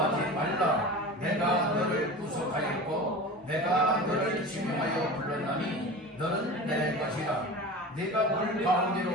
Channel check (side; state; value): both; normal; correlation 0.33